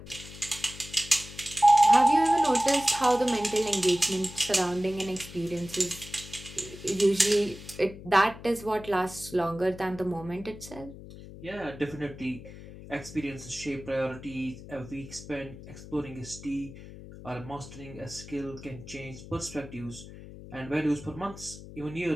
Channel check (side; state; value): left; noise; hum, 15 dB below the sound